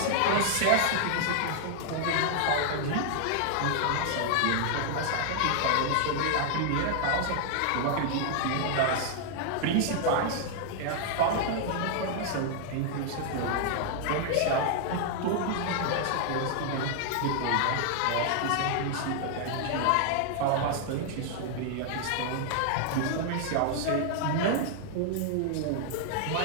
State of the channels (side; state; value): both; different; correlation 0.00